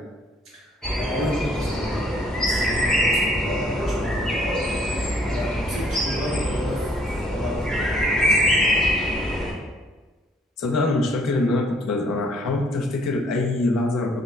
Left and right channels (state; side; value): normal; both; correlation 0.62